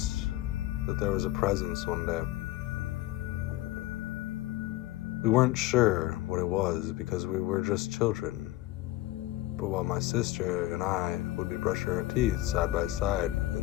that there was a presence one day. We weren't sure what it was because we were just children. But while my sister and I would be brushing our teeth side by side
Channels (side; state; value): right; quieter; 16.5 dB